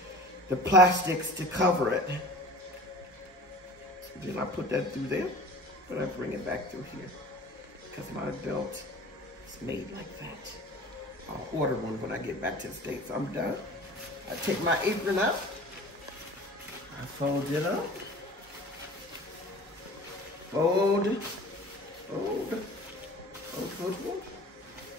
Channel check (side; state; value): both; normal; correlation 0.41